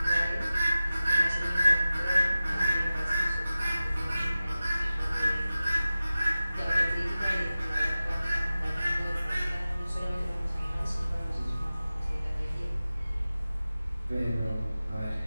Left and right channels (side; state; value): both; inverted; correlation -0.96